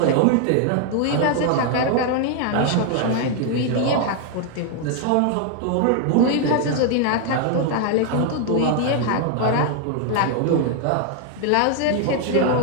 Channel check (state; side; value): different; both; correlation 0.00